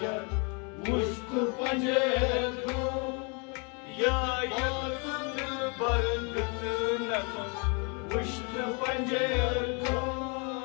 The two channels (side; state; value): right; quieter; 34.4 dB